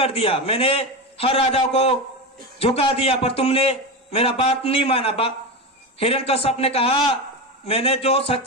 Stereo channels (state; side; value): normal; both; correlation 0.19